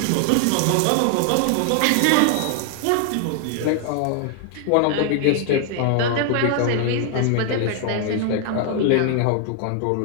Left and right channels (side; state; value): both; different; correlation 0.00